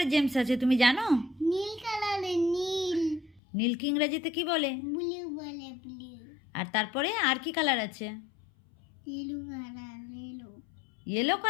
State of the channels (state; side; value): drops out; right; at 3.4 s